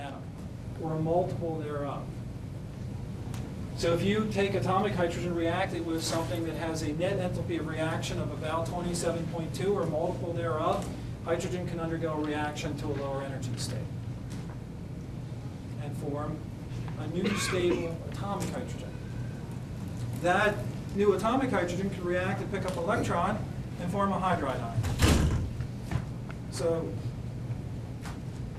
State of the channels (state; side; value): identical; both; correlation 1.00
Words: or a multiple thereof. So if you take atomic hydrogen, react it with something that has a net enthalpy of reaction of about 27.2 or a multiple thereof, hydrogen can undergo a reaction to a lower energy state and form a new stable atomic hydrogen. That new atomic hydrogen can react and pick up an electron and form a hydride ion. So,